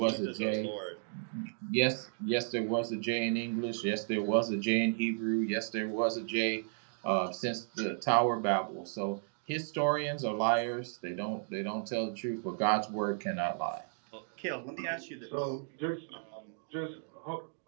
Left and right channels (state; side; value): silent; left; digital silence